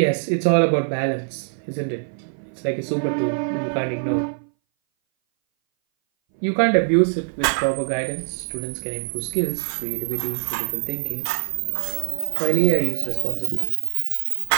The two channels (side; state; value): left; silent; 60 dB below the other